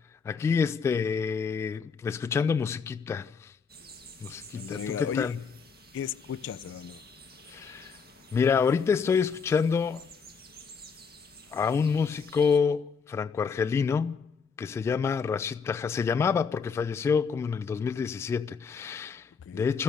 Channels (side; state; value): right; quieter; 5.8 dB